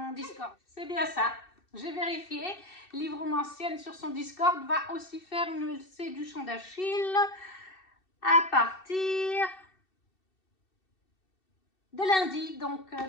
Discord. C'est bien ça. J'ai vérifié, Livromancienne sur son Discord va aussi faire une LC du Chant d'Achille à partir de lundi, donc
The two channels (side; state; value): right; late; 2.7 ms